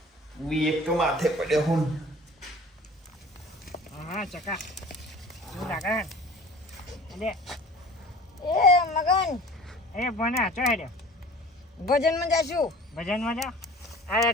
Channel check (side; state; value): both; normal; correlation 0.44